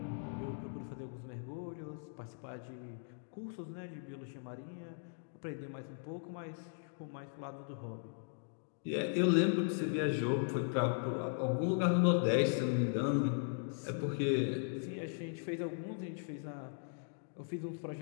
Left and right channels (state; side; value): silent; right; digital silence